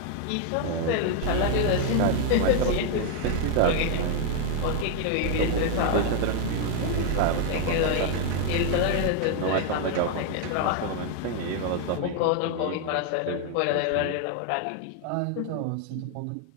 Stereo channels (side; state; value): both; different; correlation 0.01